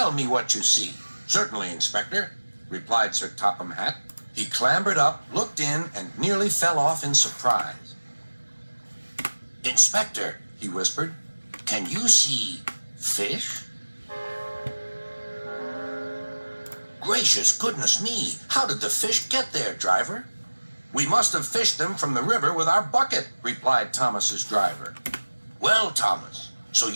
me what you see." "Certainly, Inspector," replied Sir Topham Hatt. He clambered up, looked in, and nearly fell off in surprise. "Inspector," he whispered, "can you see fish?" "Gracious goodness me! How did the fish get there, driver?" "We must have fished them from the river with our bucket," replied Thomas's driver. "Well, Thomas, so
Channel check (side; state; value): both; inverted; correlation -1.00